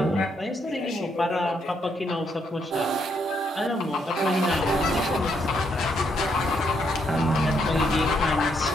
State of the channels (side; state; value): both; normal; correlation 0.75